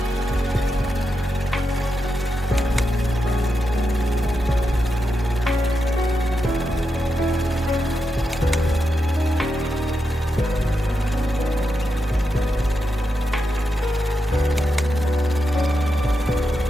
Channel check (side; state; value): both; normal; correlation 0.87